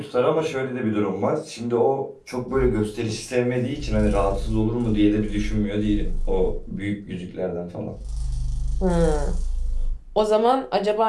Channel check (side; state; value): both; identical; correlation 1.00